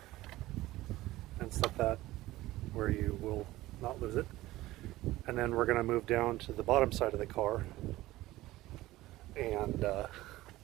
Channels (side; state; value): left; quieter; 17.2 dB